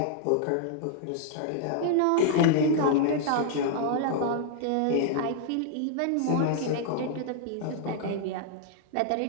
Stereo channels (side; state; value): both; different; correlation -0.01